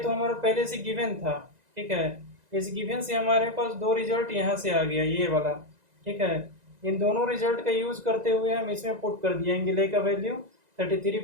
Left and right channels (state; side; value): late; left; 2.0 ms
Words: हमारा पहले से गिवन था, ठीक है, इस गिवन से हमारे पास दो रिजल्ट यहाँ से आ गया, ये वाला, ठीक है। इन दोनों रिजल्ट का यूज करते हुए हम इसमें पुट कर दिया एंगल ए का वैल्यू 33